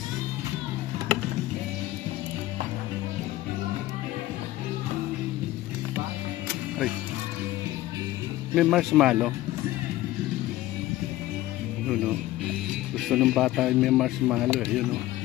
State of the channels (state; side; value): quieter; right; 16.0 dB